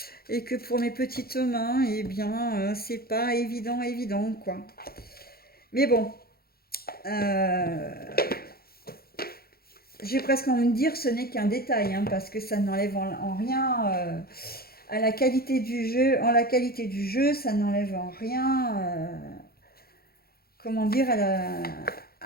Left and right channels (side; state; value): right; late; 0.44 ms